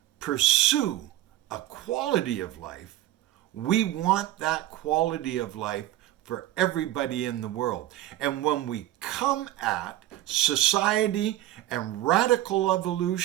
pursue a quality of life, we want that quality of life for everybody in the world. And when we come at society and radical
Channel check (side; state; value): left; quieter; 14.7 dB